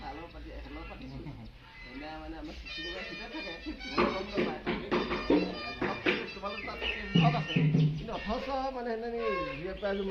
চালৰ পাতি এখেলৰ পাতিছোঁ এনে মানে আমাৰ চিঠি দিব ভিতৰত থাকে তোমালোক তাত আছে কিন্তু অথচ মানে সেইদিনা দুই প্ৰাইজো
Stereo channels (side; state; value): both; identical; correlation 1.00